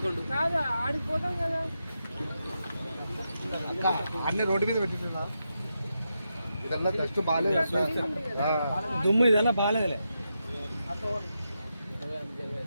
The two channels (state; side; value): inverted; both; correlation -0.86